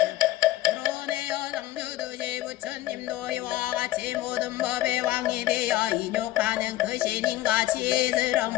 불어내어 성주듯이 부처님도 이와 같이 모든 법의 왕이 되어 인욕하는 그 신인과 지혜스러운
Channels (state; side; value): quieter; right; 15.3 dB